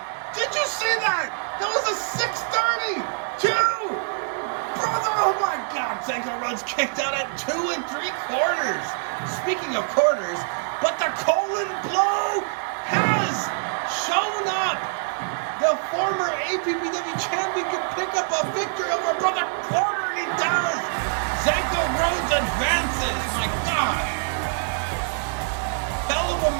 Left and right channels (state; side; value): silent; left; 61 dB below the other